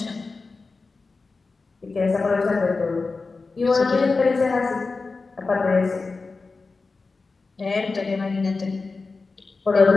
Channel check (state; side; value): quieter; right; 4.0 dB